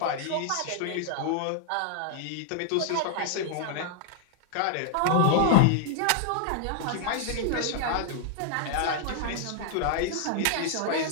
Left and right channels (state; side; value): different; both; correlation -0.01